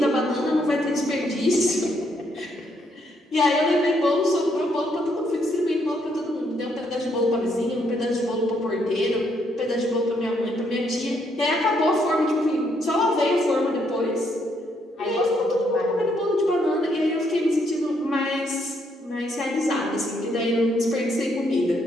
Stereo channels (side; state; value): both; normal; correlation 0.73